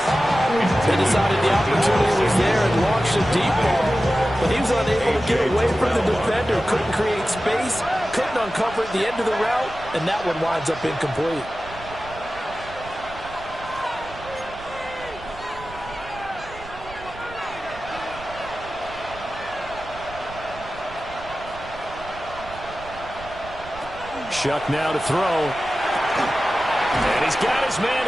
They decided the opportunity was there and launched a deep ball. But he was unable to get away from the defender. Couldn't create space. Couldn't uncover at the end of the route. And that one winds up incomplete. Shuck now to throw. And he's got his man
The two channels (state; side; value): noise; right; rumble, 17 dB below the sound